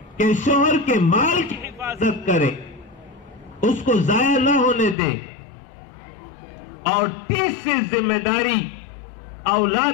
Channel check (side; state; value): right; drops out; at 5.0 s